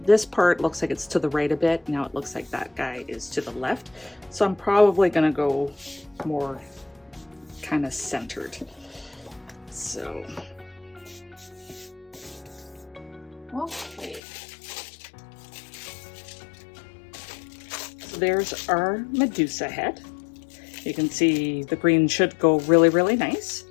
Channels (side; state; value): right; drops out; at 14.2 s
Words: part looks like it's to the right a bit. Now it looks like that guy is to the left. So I'm probably gonna go more kind of centered. So, okay. So there's our Medusa head. You can see the green should go really, really nice.